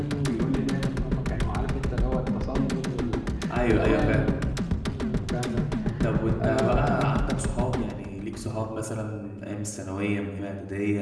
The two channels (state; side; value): identical; both; correlation 1.00